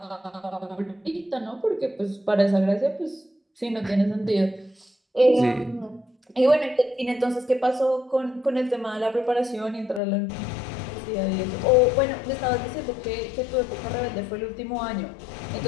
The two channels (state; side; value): drops out; right; at 10.0 s